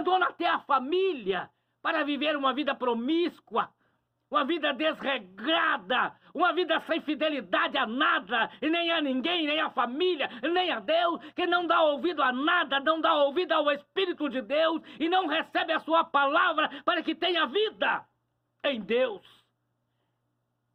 até a família para viver uma vida promíscua, uma vida desregrada, uma vida sem fidelidade a nada, e nem a ninguém, nem a família, nem a Deus, que não dá ouvido a nada, não dá ouvido ao Espírito de Deus, e não recebe a sua palavra para que tenha vida em Deus.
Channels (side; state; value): both; identical; correlation 1.00